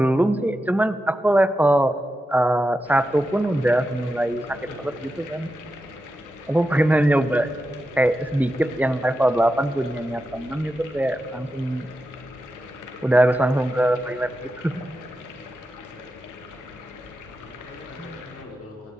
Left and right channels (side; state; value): both; normal; correlation 0.89